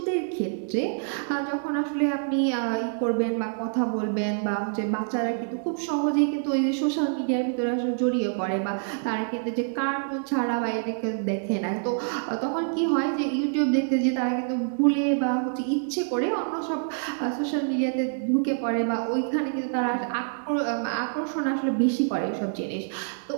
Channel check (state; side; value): silent; left; digital silence